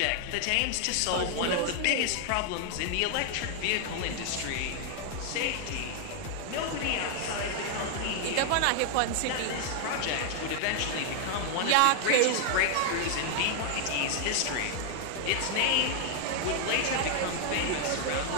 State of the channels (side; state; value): both; different; correlation 0.00